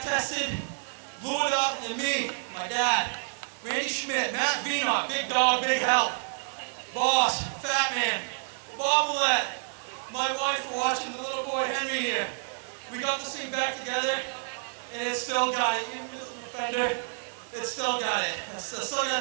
blew it up, and then me, my dad, Randy Schmidt, Matt Vienot, big dog, big help. Boss, Fat Man, Bob Willett, my wife for watching the little boy Henry here. We got this thing back together, and it still got it. Even missing a fender, it still got it. I still got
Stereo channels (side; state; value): left; silent; digital silence